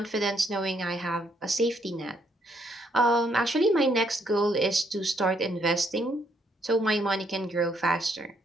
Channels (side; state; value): both; normal; correlation 0.71